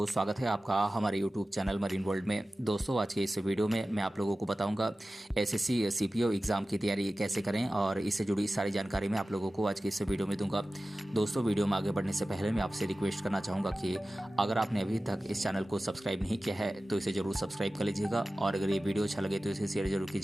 स्वागत है आपका हमारे यूट्यूब चैनल मरीन वर्ल्ड में। दोस्तों, आज के इस वीडियो में मैं आप लोगों को बताऊंगा एसएससी सीपीओ एग्ज़ाम की तैयारी कैसे करें और इससे जुड़ी सारी जानकारी मैं आप लोगों को आज के इस वीडियो में दूंगा। दोस्तों, वीडियो में आगे बढ़ने से पहले मैं आपसे रिक्वेस्ट करना चाहूँगा कि अगर आपने अभी तक इस चैनल को सब्सक्राइब नहीं किया है तो इसे ज़रूर सब्सक्राइब कर लीजिएगा और अगर ये वीडियो अच्छा लगे तो इसे शेयर जरूर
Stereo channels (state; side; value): normal; both; correlation 0.96